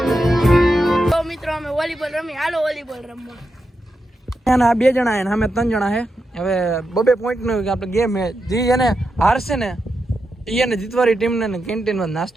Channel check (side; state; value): both; normal; correlation 0.87